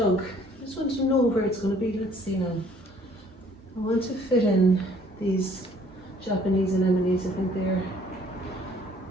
I just want to know where it's going to be. Let's see now. I want to fit in these Japanese anemones. I think they're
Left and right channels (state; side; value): normal; both; correlation 0.59